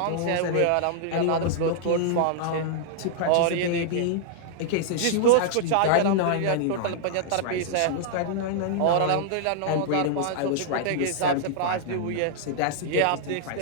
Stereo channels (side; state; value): both; different; correlation -0.01